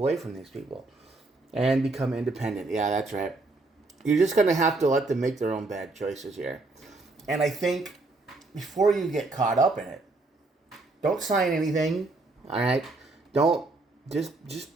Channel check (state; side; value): quieter; left; 3.3 dB